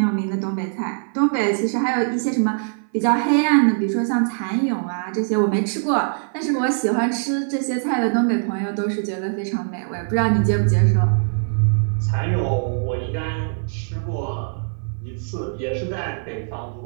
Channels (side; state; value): left; silent; 56 dB below the other